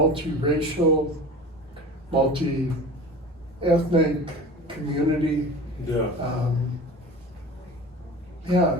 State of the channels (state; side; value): normal; both; correlation 0.37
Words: multi-ethnic community. Yeah.